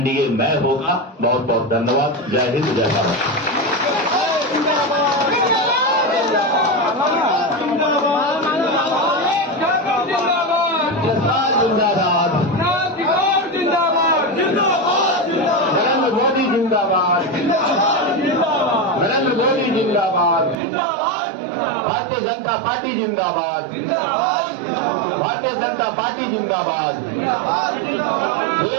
में होगा। बहुत बहुत धन्यवाद। जय हिंद, जय भारत। नरेंद्र मोदी जिंदाबाद, नरेंद्र मोदी जिंदाबाद, भारतीय जनता पार्टी जिंदाबाद, भारतीय जनता पार्टी जिंदाबाद,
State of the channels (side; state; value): left; drops out; at 20.6 s